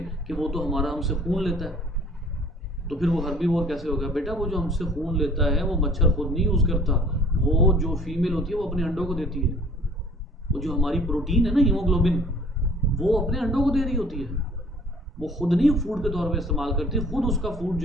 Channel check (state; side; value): normal; both; correlation 0.53